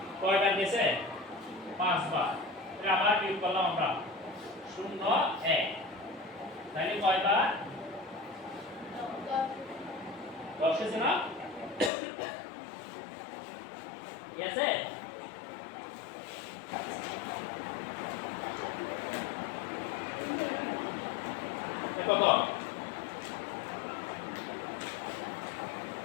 কয়বার গেছে? 5 বার। তাহলে আবার বিয়োগ করলাম আমরা 0 1। তাহলে কয়বার? 10 হয়েছে না? ঠিক আছে, কত?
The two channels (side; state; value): right; drops out; at 11.9 s